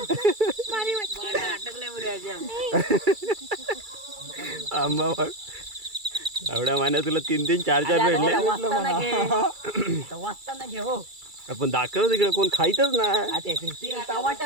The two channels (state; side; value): late; left; 2.3 ms